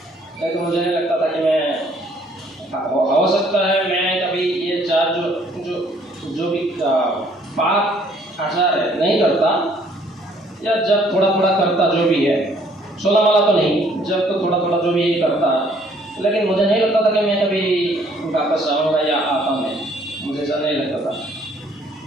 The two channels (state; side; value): normal; both; correlation 0.62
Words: लेकिन मुझे नहीं लगता था कि मैं हो सकता है मैं कभी ये चार जो भी पाप आचार है नहीं करता, या जब थोड़ा थोड़ा करता जो भी है, 16 वाला तो नहीं, जब तो थोड़ा थोड़ा जो भी यही करता, लेकिन मुझे नहीं लगता था कि मैं कभी वापस आऊँगा या आता मैं, मुझे ऐसा नहीं लगता था।